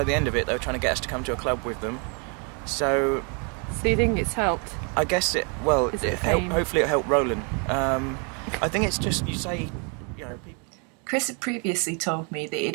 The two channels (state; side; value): quieter; left; 36.2 dB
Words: the end of it, they were trying to get us to come to a club with them. So you think it's helped? I guess hopefully it helped Roland. I think it's just, you say, you know, people... Chris had previously told me that